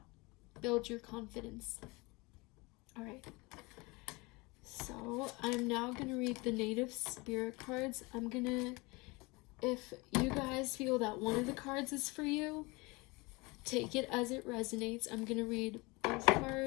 Build your confidence. All right. So I'm now going to read the native spirit cards. If you guys feel that one of the cards is for you, take it as it resonates. I'm going to read both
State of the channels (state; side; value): quieter; right; 25.1 dB